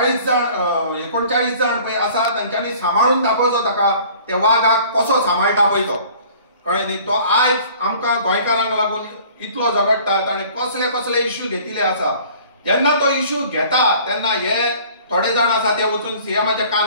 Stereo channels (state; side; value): inverted; both; correlation -0.50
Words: 39 जण पळय आसा तांच्यांनी सांबाळून दाखोवचो ताका त्या वागाक कसो सांबाळटा पळय तो. कळ्ळें न्ही. तो आयज आमकां गोंयकारांक लागून इतलो झगडटा ताणें कसले कसले इश्यू घेतिल्ले आसा. जेन्ना तो इश्यू घेता तेन्ना हे थोडे जाण आसा ते वचून सीएमाच्या